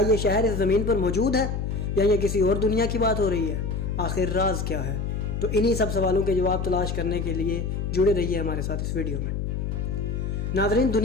ये शहर इस ज़मीन पर मौजूद है या ये किसी और दुनिया की बात हो रही है? आखिर राज क्या है? तो इन्हीं सब सवालों के जवाब तलाश करने के लिए जुड़े रहिए हमारे साथ इस वीडियो में। नाज़रीन,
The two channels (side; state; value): left; noise; hum, 2 dB below the sound